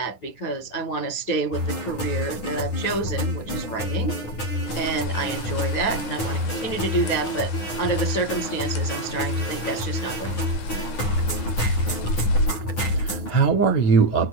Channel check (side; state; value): right; late; 9.7 ms